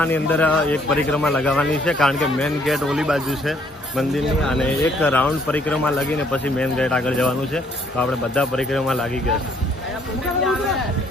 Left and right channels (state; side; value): normal; both; correlation 0.65